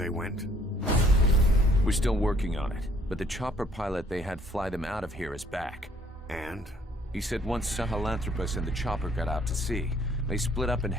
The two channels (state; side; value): normal; both; correlation 0.62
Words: went? We're still working on it, but the chopper pilot they had fly them out of here is back. And? He said once Sahelanthropus and the chopper got out to sea, they split up and